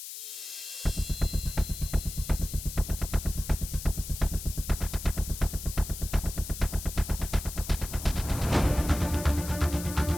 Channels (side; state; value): left; noise; hiss, 10 dB below the sound